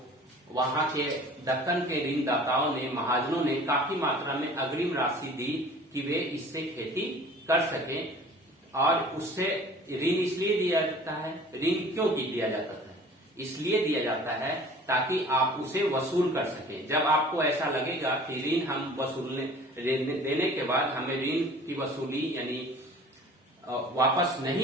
वहां के दक्कन के ऋणदाताओं ने, महाजनों ने काफी मात्रा में अग्रिम राशि दी कि वे इससे खेती कर सकें। और उससे ऋण इसलिए दिया जाता है, ऋण क्यों दिया जाता है? इसलिए दिया जाता है ताकि आप उसे वसूल कर सकें। जब आपको ऐसा लगेगा कि ऋण हम वसूलने देने के बाद हमें ऋण की वसूली यानी वापस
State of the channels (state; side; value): normal; both; correlation 0.46